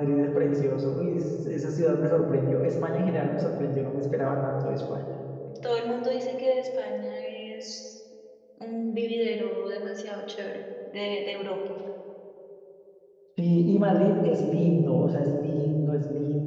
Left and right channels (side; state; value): both; identical; correlation 1.00